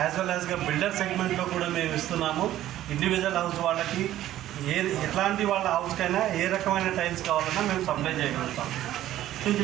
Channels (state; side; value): quieter; left; 13.4 dB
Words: వెల్ యాజ్గా బిల్డర్ సెగ్మెంట్లో కూడా మేము ఇస్తున్నాము. ఇండివిజువల్ హౌస్ వాళ్ళకి ఎట్లాంటి వాళ్ళ హౌస్కైనా ఏ రకమైన టైల్స్ కావాలన్నా మేము సప్లై చేయగలుగుతాం. నుంచి